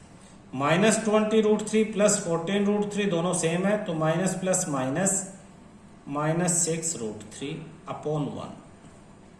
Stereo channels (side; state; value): both; identical; correlation 1.00